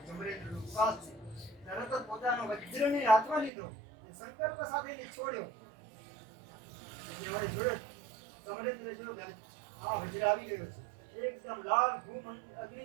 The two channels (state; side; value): drops out; left; at 3.5 s